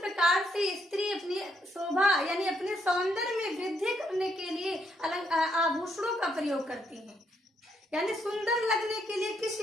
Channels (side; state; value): both; normal; correlation 0.74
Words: से स्त्री अपनी शोभा यानी अपने सौंदर्य में वृद्धि करने के लिए आभूषणों का प्रयोग करती हैं, यानी सुंदर लगने के लिए किस